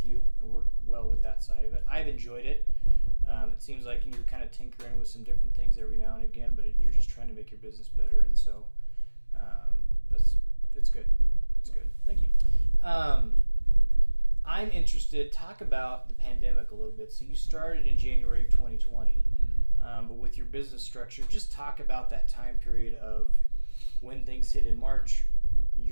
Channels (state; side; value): inverted; both; correlation -1.00